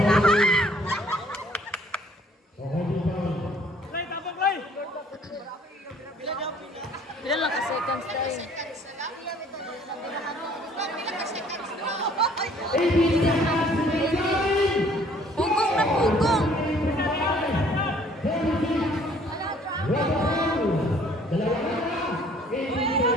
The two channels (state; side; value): normal; both; correlation 0.58